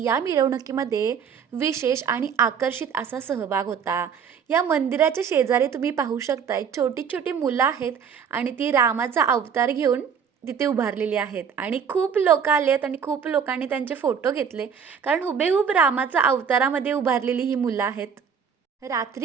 या मिरवणुकीमध्ये विशेष आणि आकर्षित असा सहभाग होता. या मंदिराच्या शेजारी तुम्ही पाहू शकताय छोटी छोटी मुलं आहेत आणि ती रामाचा अवतार घेऊन तिथे उभारलेली आहेत आणि खूप लोक आलेत आणि खूप लोकांनी त्यांचे फोटो घेतले, कारण हुबेहूब रामाचा अवतारामध्ये उभारलेली ही मुलं आहेत.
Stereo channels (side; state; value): left; quieter; 7.0 dB